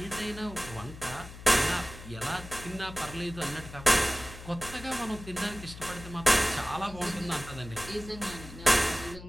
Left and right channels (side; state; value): left; noise; hum, 14 dB below the sound